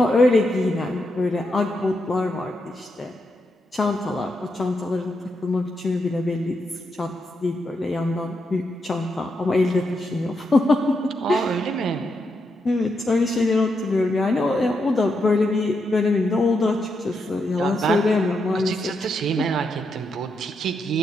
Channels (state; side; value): normal; both; correlation 0.82